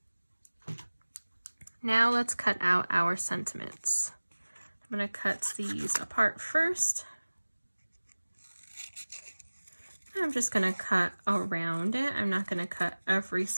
Now let's cut out our sentiments. I'm going to cut these apart first. I'm just going to cut around it. I'm not going to cut every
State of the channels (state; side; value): inverted; both; correlation -1.00